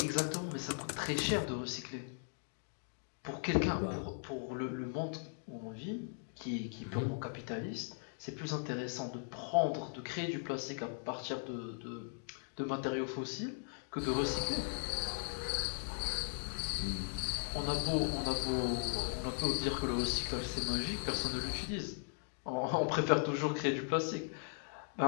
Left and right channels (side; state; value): right; silent; digital silence